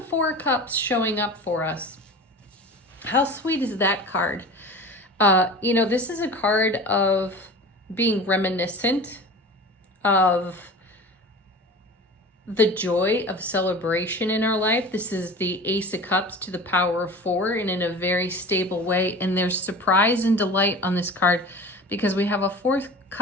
4 cups showing up for us. How sweet is that card? This is a card of being reminiscent of the joy of celebration in our life. This is the Ace of Cups to the power of 4, and in a very stable way. And there's surprise and delight on this card because we have a 4th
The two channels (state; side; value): normal; both; correlation 0.36